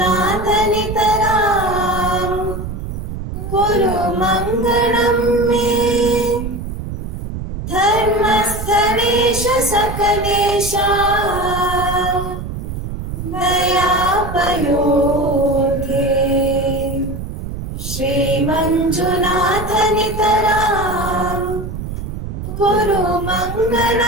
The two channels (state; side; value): noise; right; rumble, 7 dB below the sound